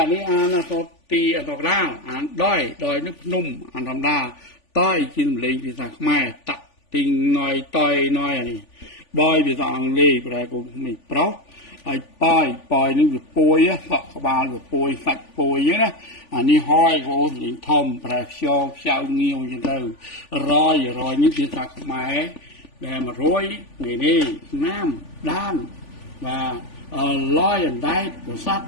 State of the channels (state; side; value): late; right; 3.5 ms